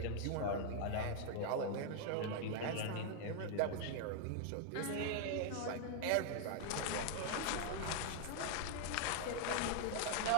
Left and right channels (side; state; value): both; different; correlation 0.00